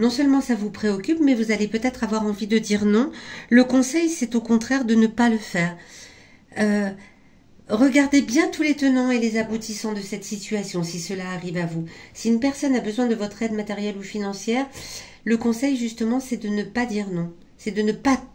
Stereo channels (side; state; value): both; identical; correlation 1.00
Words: seulement ça vous préoccupe, mais vous allez peut-être avoir envie de dire non. Le conseil, c'est au contraire de ne pas le faire. Regardez bien tous les tenants et les aboutissants de cette situation, si cela arrive à vous. Si une personne a besoin de votre aide matérielle ou financière, le conseil, justement, c'est de ne pas dire non. C'est de ne pas